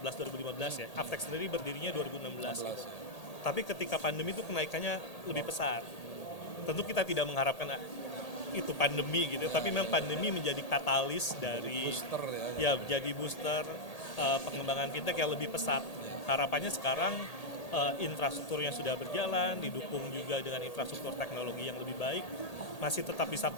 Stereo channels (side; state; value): right; late; 1.8 ms